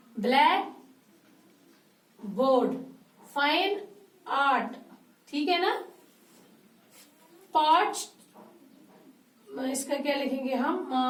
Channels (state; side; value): identical; both; correlation 1.00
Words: black board, fine art. ठीक है ना. पॉट, इसका क्या लिखेंगे हम?